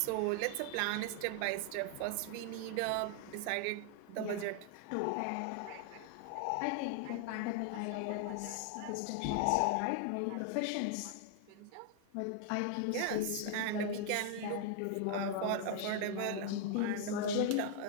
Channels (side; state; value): both; different; correlation 0.00